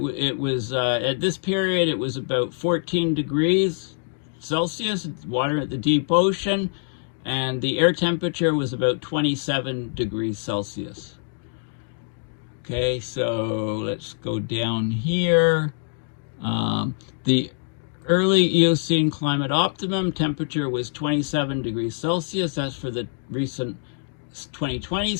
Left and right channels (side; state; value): right; silent; digital silence